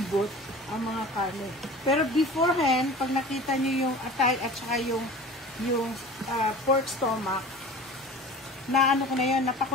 ang mga karne. Pero beforehand, pag nakita nyo yung atay at saka yung pork stomach, na ko na yun,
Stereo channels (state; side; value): normal; both; correlation 0.39